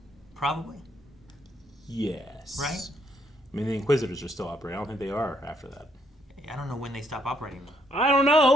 Probably. Yes. Right? I mean, the Inquisitors are still operating. I don't think they are after that. I don't know when they stop operating. I don't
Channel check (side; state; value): both; normal; correlation 0.71